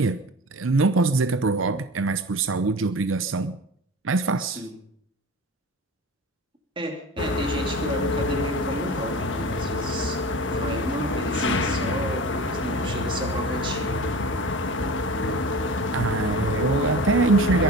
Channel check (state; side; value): normal; both; correlation 0.35